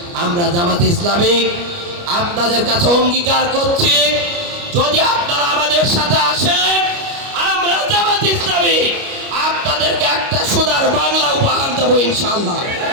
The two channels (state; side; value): late; left; 29 ms